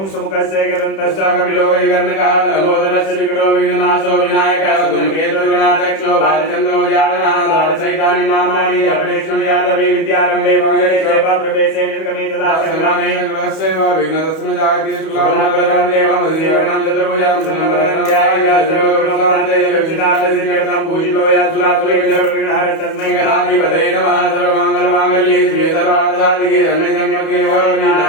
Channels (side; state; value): right; late; 31 ms